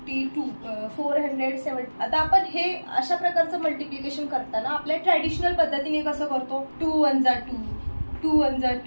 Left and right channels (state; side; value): inverted; both; correlation -1.00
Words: 470। आता आपण हे अशा प्रकारचं मल्टिप्लिकेशन करताना आपल्या ट्रॅडिशनल पद्धतीने कसं करतो, 2 1 जा 2, 2 1 जा